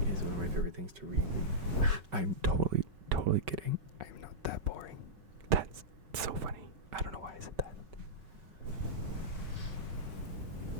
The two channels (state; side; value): late; left; 5.3 ms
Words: is one of my favorite things to read. I'm totally kidding. I'm not that boring. That's so funny. I don't know why I said that.